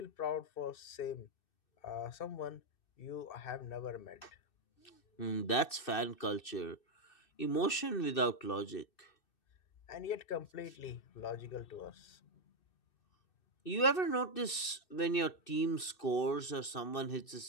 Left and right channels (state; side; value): late; right; 2.6 ms